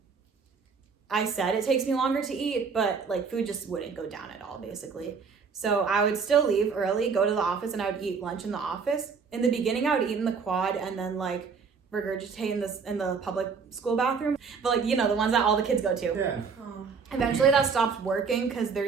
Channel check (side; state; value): left; quieter; 5.5 dB